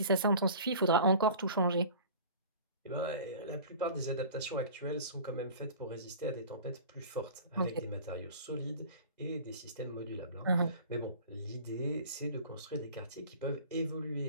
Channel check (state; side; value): inverted; both; correlation -0.42